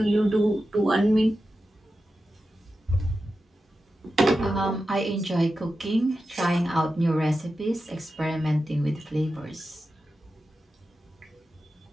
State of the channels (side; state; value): both; normal; correlation 0.91